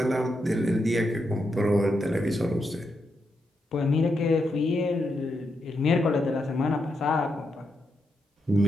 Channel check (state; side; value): normal; both; correlation 0.83